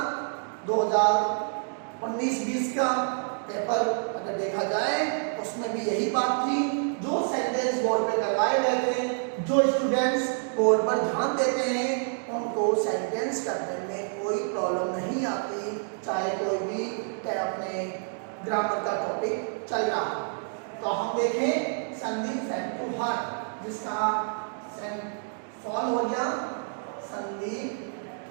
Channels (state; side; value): silent; left; 59 dB below the other